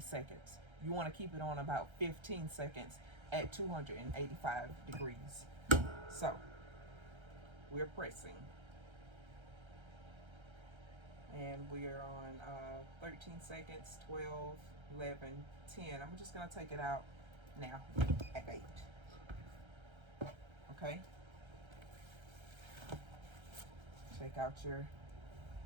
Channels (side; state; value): left; late; 1.3 ms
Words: You want to keep it on about 15 seconds at 285 degrees. So we're pressing. And we're on 13 seconds, 12, 11, 10. I'm just going to take it out now at 8. Okay? Take out your,